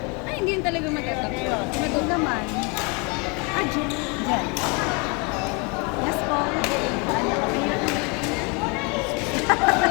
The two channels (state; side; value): quieter; right; 31.1 dB